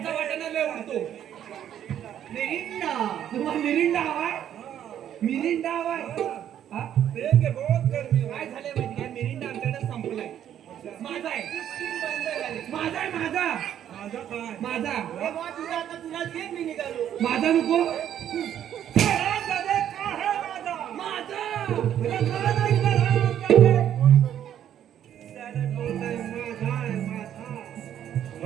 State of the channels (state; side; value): quieter; left; 10.3 dB